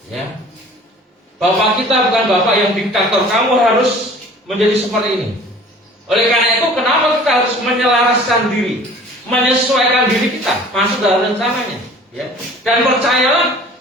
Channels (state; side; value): normal; both; correlation 0.47